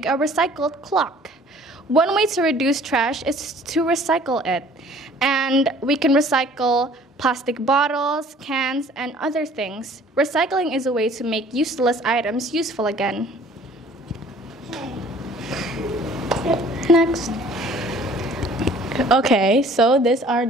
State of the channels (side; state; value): both; normal; correlation 0.53